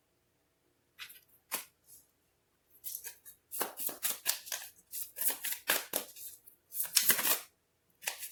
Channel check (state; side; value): identical; both; correlation 1.00